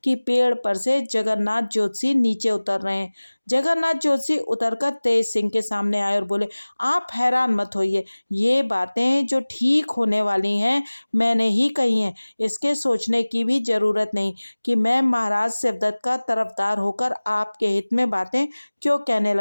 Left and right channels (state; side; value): inverted; both; correlation -1.00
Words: कि पेड़ पर से जगन्नाथ जोशी नीचे उतर रहे हैं। जगन्नाथ जोशी उतरकर तेज सिंह के सामने आए और बोले, आप हैरान मत होइए, ये बातें जो ठीक होने वाली हैं मैंने ही कही हैं। इसके सोचने की भी जरूरत नहीं कि मैं महाराज शिवदत्त का तरफदार होकर आपके हित में बातें क्यों कहने